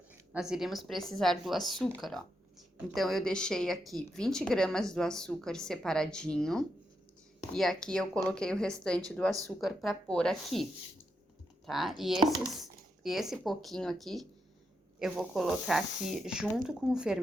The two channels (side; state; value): both; normal; correlation 0.83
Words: Nós iríamos precisar do açúcar, ó. Então, eu deixei aqui 20 gramas do açúcar separadinho. E aqui eu coloquei o restante do açúcar para pôr aqui, tá? E esse pouquinho aqui, eu vou colocar aqui junto com o